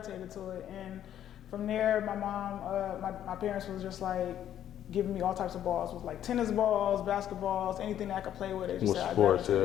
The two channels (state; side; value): quieter; right; 10.8 dB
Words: to it. And from there, my mom, my parents was just like, giving me all types of balls. It was like tennis balls, basketballs, anything that I could play with. They just said I